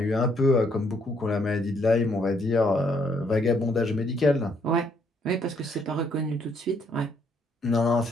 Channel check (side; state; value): both; normal; correlation 0.70